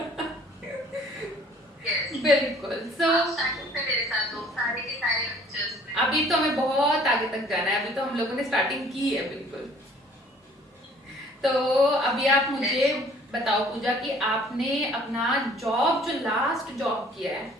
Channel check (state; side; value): normal; both; correlation 0.55